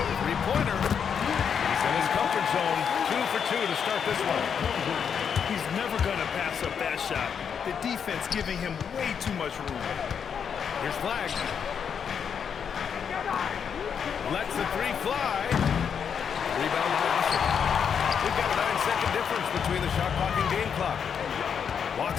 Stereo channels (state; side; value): quieter; right; 7.3 dB